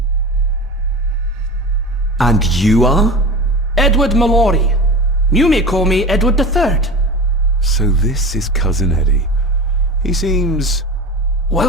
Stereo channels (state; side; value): normal; both; correlation 0.31